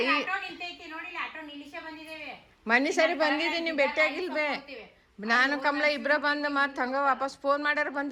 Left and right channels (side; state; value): both; identical; correlation 1.00